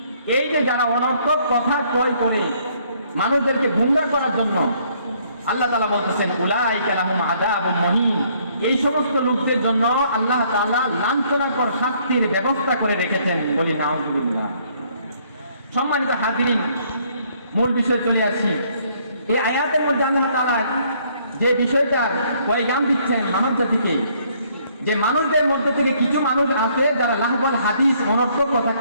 এই যে যারা অনর্থক কথা ক্রয় করে মানুষদেরকে গুমরাহ করার জন্য, আল্লাহ তাআলা বলতেছেন উলাইকা লাহুম আযাবুম মুহিন, এই সমস্ত লোকদের জন্য আল্লাহ তাআলা লাঞ্ছনাকর শাস্তির ব্যবস্থা করে রেখেছেন। বলি নাউযুবিল্লাহ। সম্মানিত হাজিরিন, মূল বিষয়ে চলে আসি। এই আয়াতের মধ্যে আল্লাহ তাআলা যে বিষয়টার পয়গাম দিচ্ছেন মানব জাতিকে, যে মানুষদের মধ্যে থেকে কিছু মানুষ আছে যারা লাহওয়াল হাদিস, অনর্থক কথা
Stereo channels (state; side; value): inverted; both; correlation -0.65